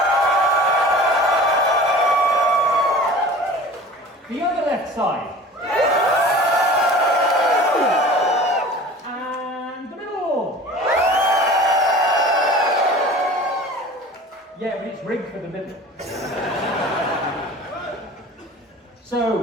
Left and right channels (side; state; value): both; normal; correlation 0.41